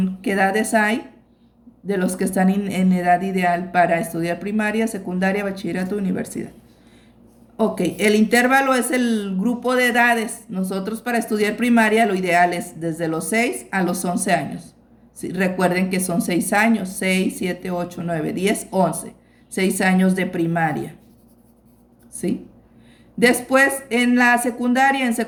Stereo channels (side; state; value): both; identical; correlation 1.00